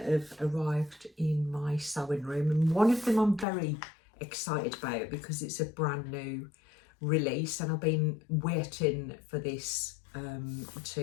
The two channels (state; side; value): drops out; right; at 3.5 s